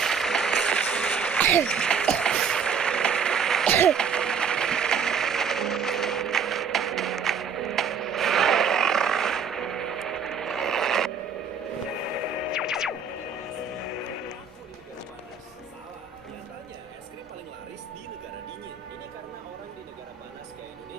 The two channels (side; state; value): left; quieter; 6.1 dB